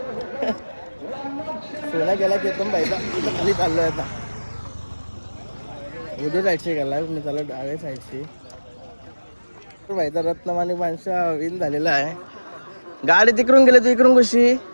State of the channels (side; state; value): both; inverted; correlation -1.00